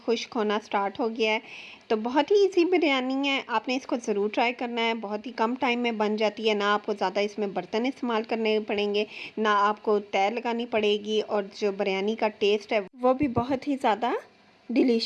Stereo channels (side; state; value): both; identical; correlation 1.00